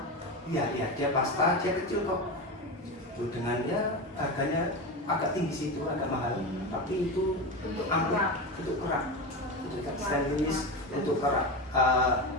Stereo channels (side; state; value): both; normal; correlation 0.21